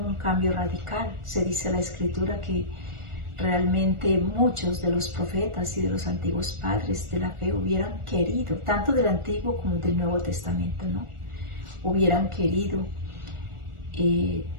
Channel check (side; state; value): left; late; 1.4 ms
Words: cambio radical. Se dice en la Escritura que realmente muchos de los profetas y de los antiguos padres de la fe hubieran querido, tanto del Antiguo como del Nuevo Testamento, ¿no? Hubieran querido